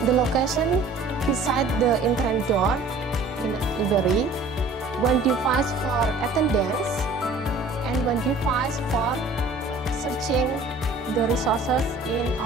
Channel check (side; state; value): left; quieter; 3.2 dB